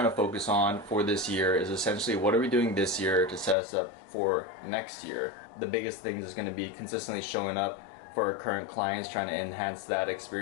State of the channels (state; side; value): drops out; right; at 3.6 s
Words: to focus on for this year is essentially what are we doing this year to set us up for next year. The biggest thing is going to be consistently showing up for our current clients, trying to enhance that